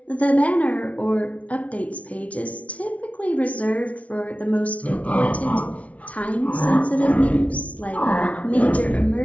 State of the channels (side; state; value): right; late; 0.066 ms